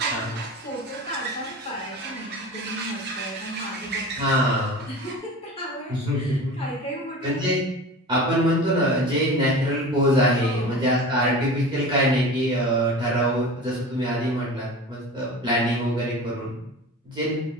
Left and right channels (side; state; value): both; normal; correlation 0.34